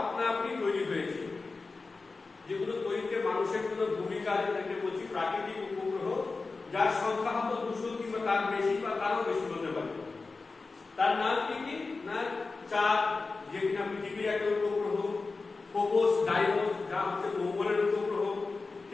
আপনা আপনি তৈরি হয়েছে, যেগুলো তৈরিতে মানুষের কোনো ভূমিকা, যেটাকে বলছি প্রাকৃতিক উপগ্রহ, যার সংখ্যা হয়তো 200 কিংবা তার বেশি বা তারও বেশি হতে পারে। তার নাম কি কি না, চাঁদ যে কিনা পৃথিবীর একটা উপগ্রহ, ফোবস, ডাইমোস যা হচ্ছে মঙ্গলের উপগ্রহ,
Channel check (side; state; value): right; quieter; 3.9 dB